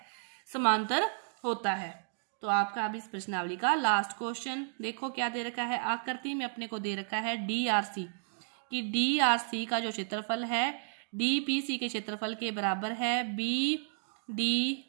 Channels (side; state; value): left; silent; digital silence